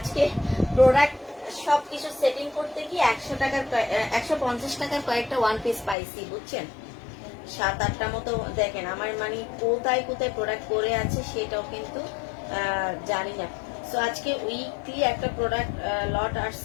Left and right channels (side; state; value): right; drops out; at 6.0 s